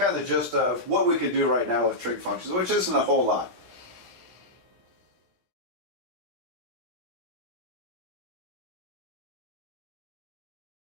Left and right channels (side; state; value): left; late; 17 ms